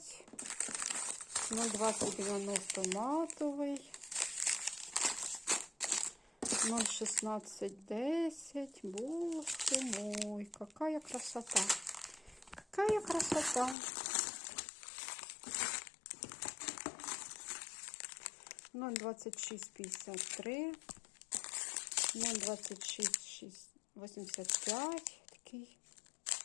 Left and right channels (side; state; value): right; drops out; at 13.8 s